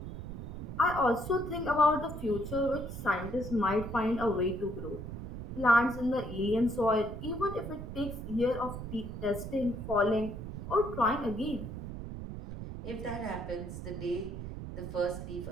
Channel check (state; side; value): noise; right; rumble, 8 dB below the sound